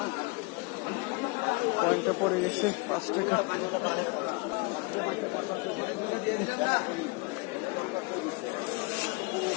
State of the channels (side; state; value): right; quieter; 27.3 dB